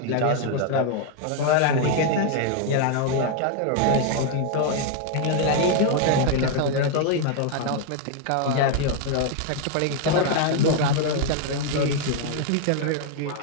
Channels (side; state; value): both; different; correlation 0.00